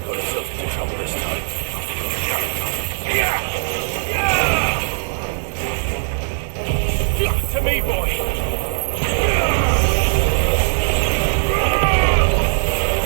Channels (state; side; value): silent; left; digital silence